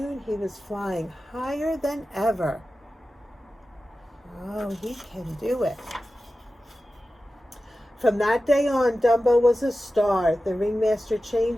he was flying higher than ever. Oh, he can do it. From that day on, Dumbo was a star. The ringmaster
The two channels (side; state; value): both; normal; correlation 0.94